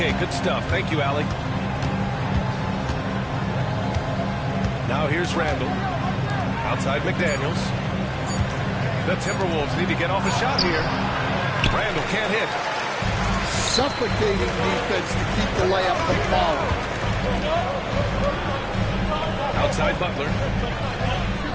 good stuff. Thank you, Allie. Now here's Randall. Outside McDaniels. The Timberwolves need to get off a shot here. Randall can't hit. Suffocating defense to keep the layup from falling. Outside Butler.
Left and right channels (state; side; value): identical; both; correlation 1.00